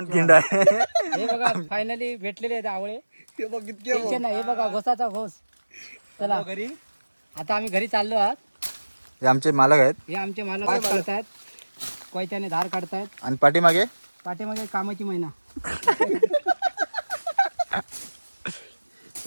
खिंड आहे. हे बघा फायनली भेटलेले आहेत आवळे. टेन्शन नाही. हे बघा घोसाचा घोस. चला घरी. आता आम्ही घरी चाललो आहात. हे आमचे मालक आहेत. हे आमचे मालक काढतायत कोयत्याने धार काढतायत. आणि पाठीमागे पाठीमागे कामाची महिना.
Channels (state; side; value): inverted; both; correlation -1.00